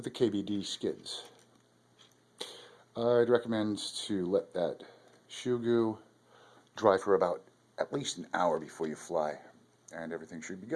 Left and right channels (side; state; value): both; identical; correlation 1.00